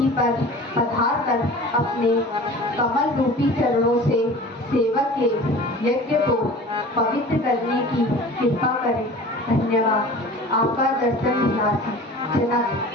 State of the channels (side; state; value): both; normal; correlation 0.40